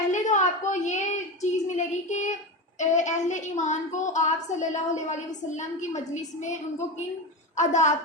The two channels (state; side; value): normal; both; correlation 0.20